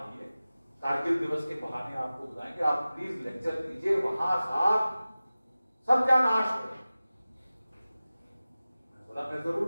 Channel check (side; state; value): both; inverted; correlation -0.97